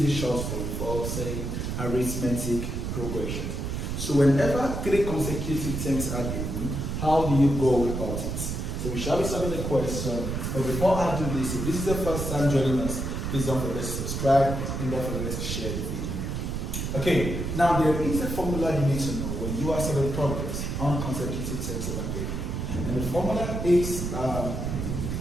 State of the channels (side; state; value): right; noise; rumble, 3 dB below the sound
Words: a short form for saying arithmetic progression. So whenever three consecutive terms are given, how do you go about it? So we shall be solving the question. But before I do this, if this is the first time joining us, please don't forget to subscribe and don't forget to share the video. Okay, now there is a formula you need to know when you are solving problems on consecutive terms of an AP. And the formula is